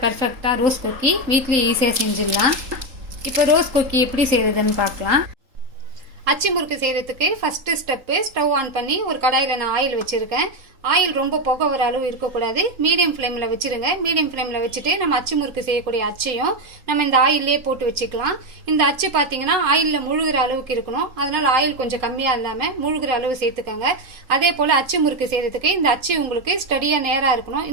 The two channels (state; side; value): late; left; 3.8 ms